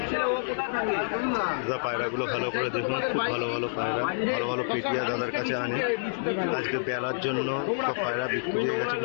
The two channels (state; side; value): silent; right; 59 dB below the other